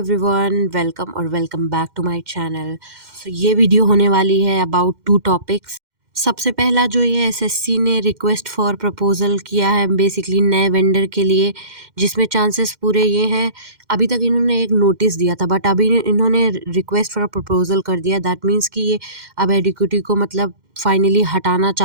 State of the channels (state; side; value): late; left; 2.1 ms